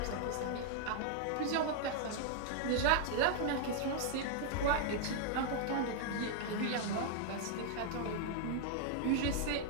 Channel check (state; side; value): different; both; correlation -0.01